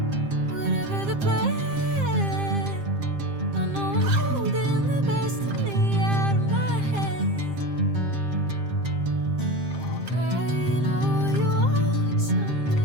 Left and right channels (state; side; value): late; left; 7.5 ms